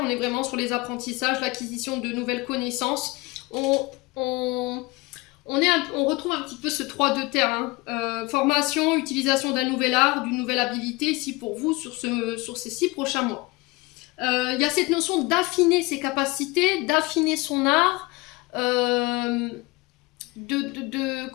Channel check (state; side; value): quieter; right; 23.7 dB